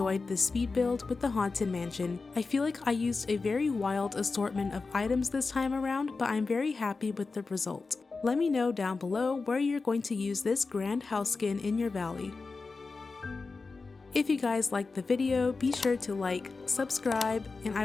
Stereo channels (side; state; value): right; quieter; 4.1 dB